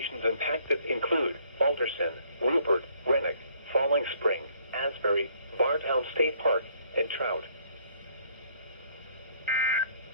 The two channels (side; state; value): both; inverted; correlation -0.63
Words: impacted include Alderson, Rupert, Rennick, Falling Spring, Asbury, Bartown State Park, and Trout.